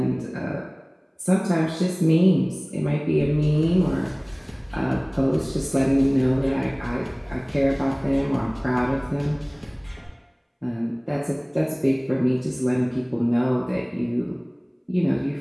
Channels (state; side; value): identical; both; correlation 1.00